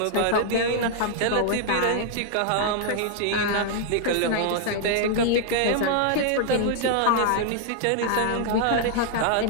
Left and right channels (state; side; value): different; both; correlation -0.01